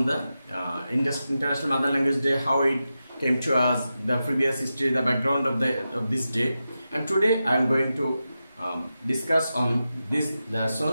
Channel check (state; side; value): inverted; both; correlation -0.91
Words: the International Mother Language Day, how it came to us, the previous history, the background of this day, and today I am going to discuss on this